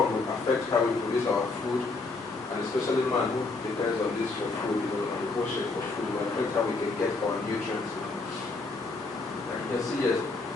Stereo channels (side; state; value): right; quieter; 3.6 dB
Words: will affect how we produce our food, and especially man who depends on this for food, on the ocean for food, will affect how we can get our nutrients. And you can see yes,